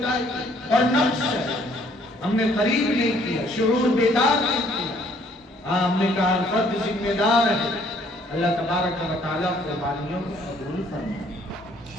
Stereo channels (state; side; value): normal; both; correlation 0.62